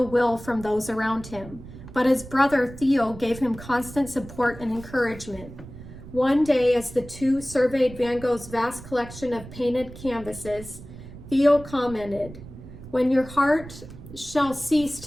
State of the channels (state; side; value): noise; right; rumble, 15 dB below the sound